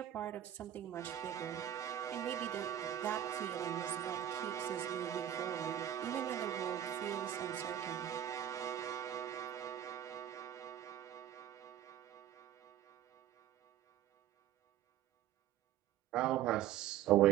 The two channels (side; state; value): left; quieter; 11.4 dB